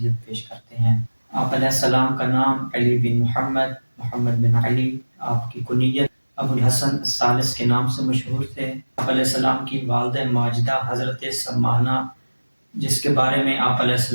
پیش کرتے ہیں۔ آپ علیہ السلام کا نام علی بن محمد بن علی، آپ کی کنیت ابو الحسن الثالث کے نام سے مشہور تھے۔ آپ علیہ السلام کی والدہ ماجدہ حضرت سمانہ، جس کے بارے میں آپ علیہ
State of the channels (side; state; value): both; inverted; correlation -1.00